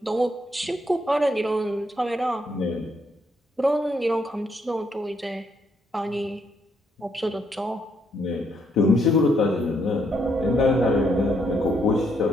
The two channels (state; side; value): normal; both; correlation 0.74